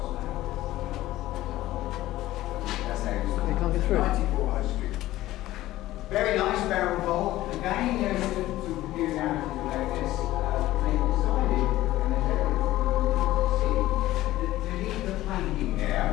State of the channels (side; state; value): right; quieter; 15.8 dB